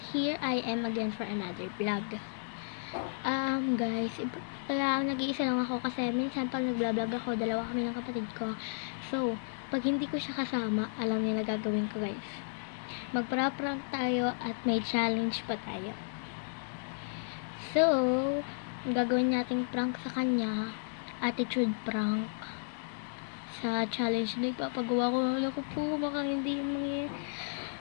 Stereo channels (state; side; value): silent; right; digital silence